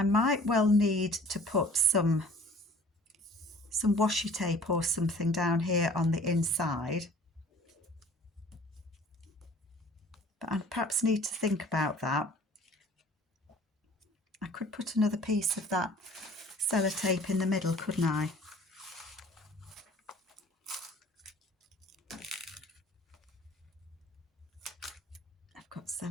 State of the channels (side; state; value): both; normal; correlation 0.50